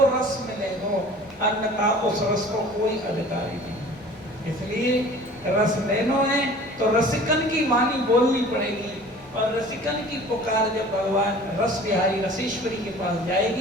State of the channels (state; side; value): normal; both; correlation 0.45